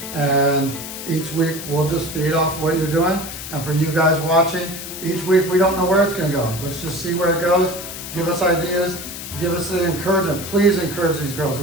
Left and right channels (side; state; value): left; noise; hiss, 9 dB below the sound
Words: And each week we'll just feed off what you're doing. And for you guys watching, each week we don't know where it's gonna go. Let's just see where it goes. Give us ideas, give us the encouragement. Please encourage these girls.